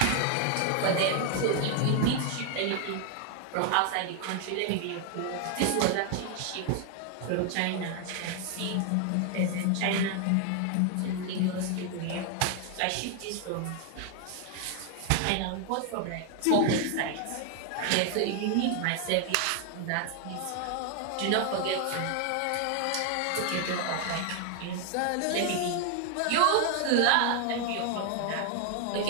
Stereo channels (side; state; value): both; different; correlation 0.00